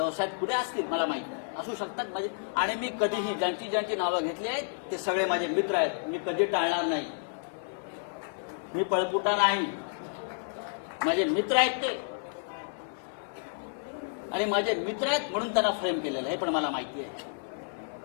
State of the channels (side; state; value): right; silent; 57 dB below the other